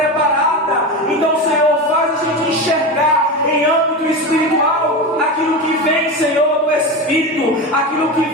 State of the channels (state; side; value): normal; both; correlation 0.21